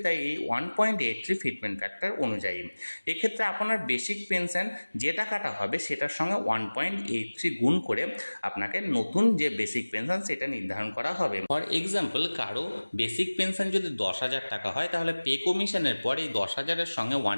তাই এই 1.83 ফিটমেন্ট ফ্যাক্টর অনুযায়ী এক্ষেত্রে আপনার বেসিক পেনশন যে টাকাটা হবে সেটার সঙ্গে 1.83 গুণ করে আপনাকে নতুন যে বেসিক পেনশন সেটা নির্ধারণ করা হবে। ফর এক্সাম্পল, কারো বেসিক পেনশন যদি 10,000 টাকা হয় তাহলে পে কমিশনের পর এই 10,000-এর সঙ্গে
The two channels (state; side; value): inverted; both; correlation -1.00